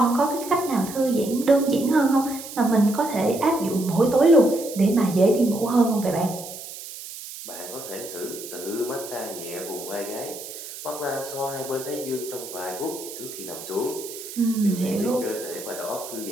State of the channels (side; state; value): right; noise; hiss, 12 dB below the sound